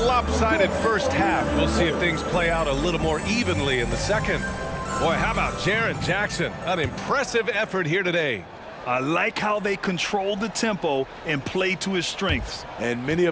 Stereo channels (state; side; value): identical; both; correlation 1.00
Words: first half, we'll see if things play out a little more evenly in the second. Boy, how about Jaren Jackson? An impressive effort here today. I like how they controlled the tempo and played to his strengths. And many